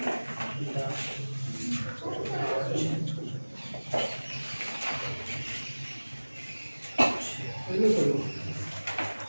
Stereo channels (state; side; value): inverted; both; correlation -1.00